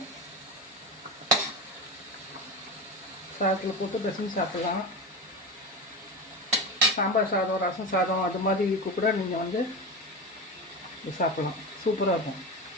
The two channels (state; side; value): normal; both; correlation 0.23